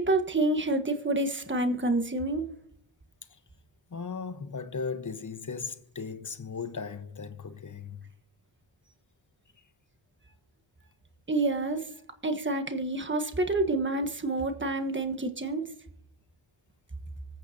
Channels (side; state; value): both; normal; correlation 0.13